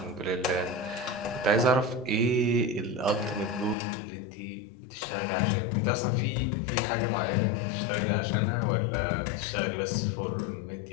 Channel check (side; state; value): right; drops out; at 3.8 s